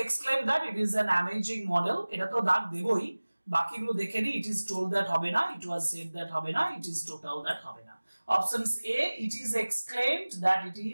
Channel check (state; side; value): inverted; both; correlation -1.00